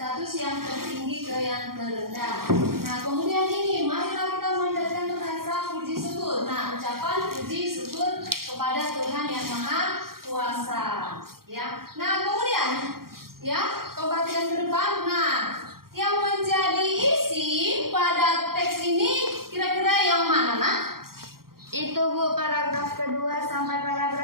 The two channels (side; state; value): left; late; 0.93 ms